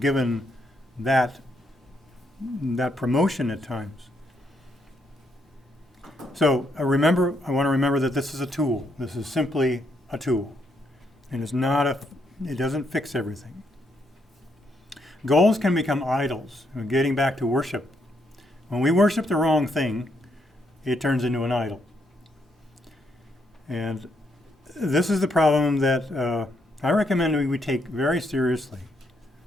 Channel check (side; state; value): both; normal; correlation 0.76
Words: that promotion at times. So I want to remember that this is a tool. This is simply a tool. And it doesn't fix everything. Goals can become idols. Getting back to worship. When we worship the wrong thing, it turns into an idol. And this is the problem that I recommend we take very seriously.